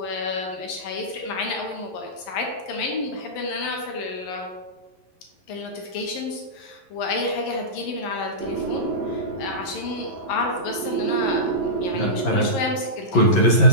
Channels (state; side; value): late; right; 11 ms